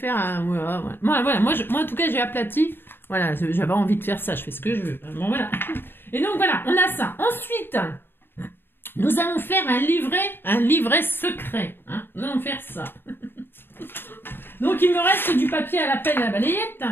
un... Voilà. Moi, en tout cas, j'ai aplati, voilà, j'avais envie de faire ça, je fais ce que je veux, bon, voilà. Et donc, voilà, on a ça. Ensuite, nous allons faire un livret secret, hein, nous allons faire ça. Donc, il me reste du papier à la pelle à la balayette.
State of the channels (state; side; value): late; right; 0.10 ms